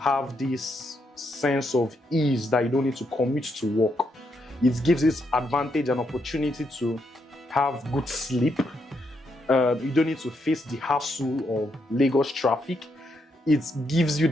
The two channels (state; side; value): normal; both; correlation 0.79